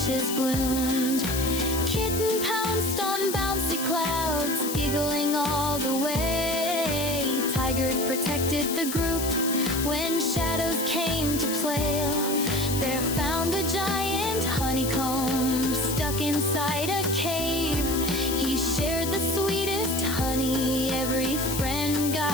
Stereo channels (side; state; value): left; noise; hiss, 5 dB below the sound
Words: bloomed. Kitten pounced on bouncy clouds, giggling all the way. Tiger protected the group when shadows came to play. Bear found a giant honeycomb stuck inside a cave. He shared the sweetest honey, every friend